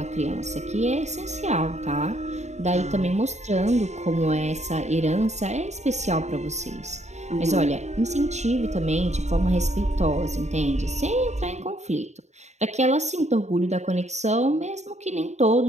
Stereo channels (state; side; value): late; left; 0.33 ms